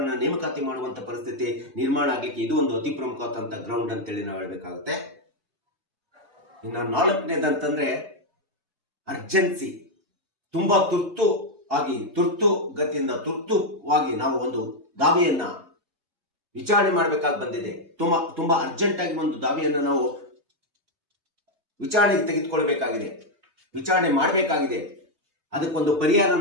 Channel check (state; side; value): late; left; 3.2 ms